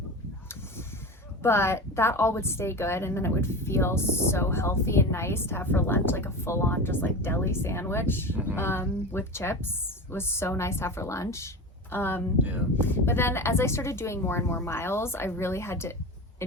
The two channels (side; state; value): both; normal; correlation 0.28